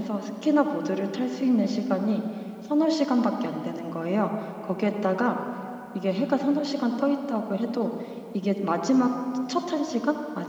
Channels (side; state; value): both; identical; correlation 1.00